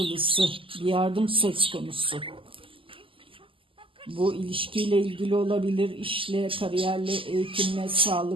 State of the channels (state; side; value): late; left; 0.25 ms